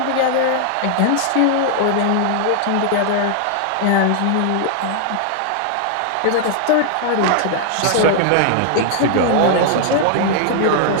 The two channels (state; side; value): different; both; correlation 0.00